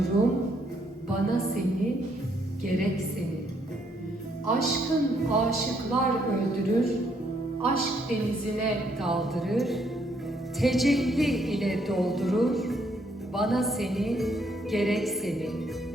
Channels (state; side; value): normal; both; correlation 0.71